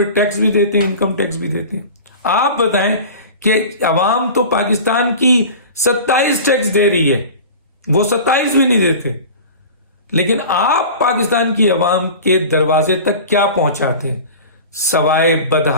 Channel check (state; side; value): inverted; both; correlation -0.36